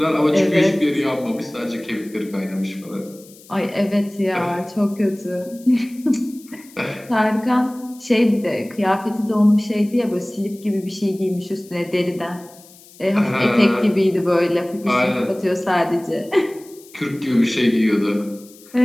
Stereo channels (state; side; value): noise; left; hiss, 23 dB below the sound